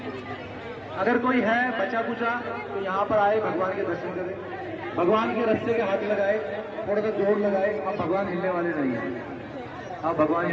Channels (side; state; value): both; identical; correlation 1.00